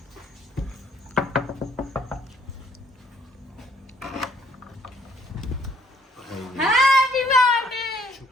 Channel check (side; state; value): both; normal; correlation 0.63